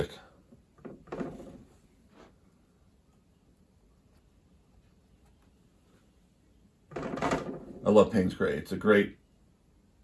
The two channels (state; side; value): identical; both; correlation 1.00